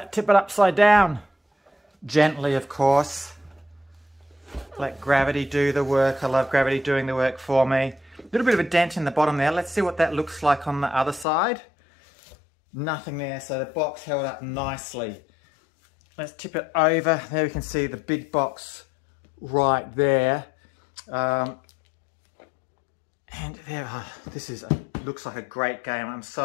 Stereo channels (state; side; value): drops out; right; at 11.2 s